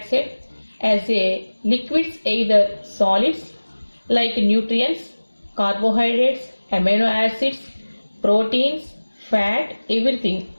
as a liquids, either solids like nutrients, carbohydrates, amino acids, proteins, fat, everything.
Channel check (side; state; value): both; inverted; correlation -1.00